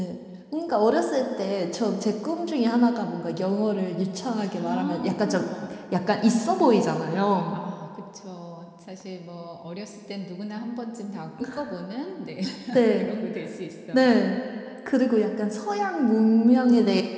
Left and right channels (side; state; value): both; identical; correlation 1.00